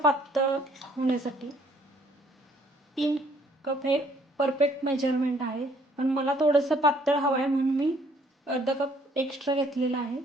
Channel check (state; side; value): normal; both; correlation 0.62